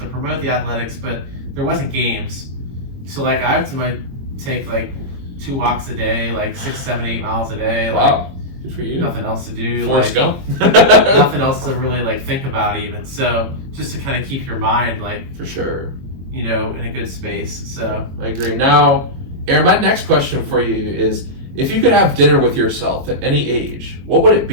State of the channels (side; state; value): left; late; 22 ms